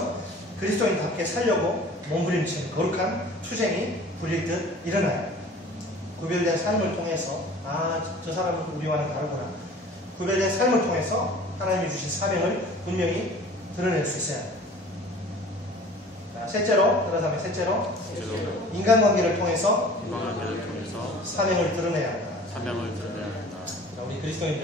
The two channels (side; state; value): both; normal; correlation 0.45